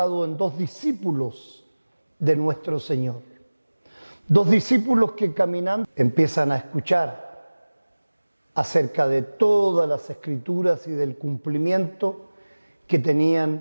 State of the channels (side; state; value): both; inverted; correlation -1.00